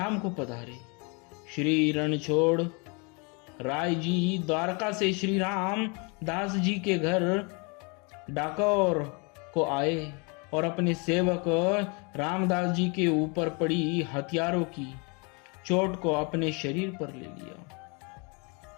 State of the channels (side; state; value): right; quieter; 32.3 dB